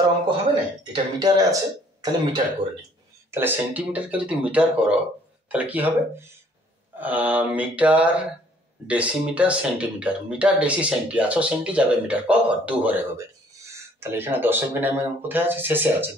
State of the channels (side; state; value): both; normal; correlation 0.60